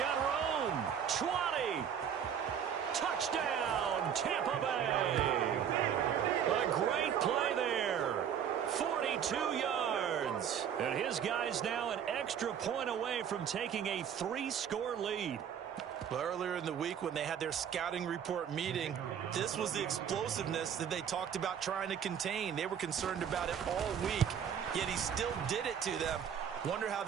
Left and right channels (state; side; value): quieter; left; 8.4 dB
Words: room. 20. Touchdown, Tampa Bay. A great play there. 42 yards. And his guys now an extra point away from taking a 3-score lead. Well, earlier in the week when they had their scouting report meeting, this was the explosiveness that they talked about trying to contain. They were concerned about it all week, yet he still did it to them. Wonder how